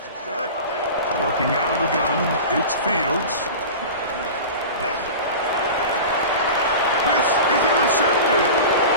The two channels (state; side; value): inverted; both; correlation -0.32